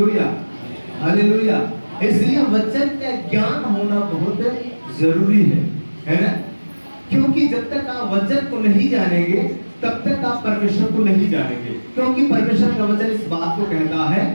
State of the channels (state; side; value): inverted; both; correlation -1.00